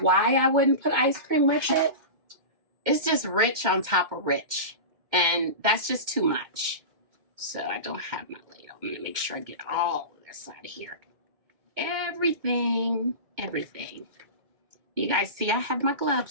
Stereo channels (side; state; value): left; late; 2.2 ms